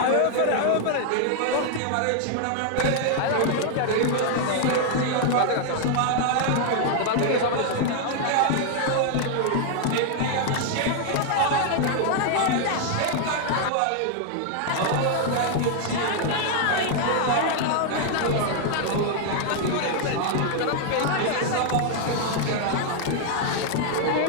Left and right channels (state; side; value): different; both; correlation 0.00